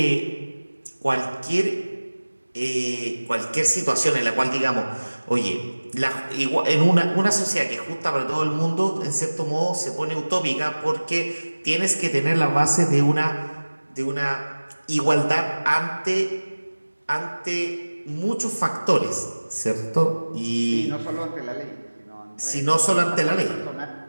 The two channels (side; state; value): both; inverted; correlation -1.00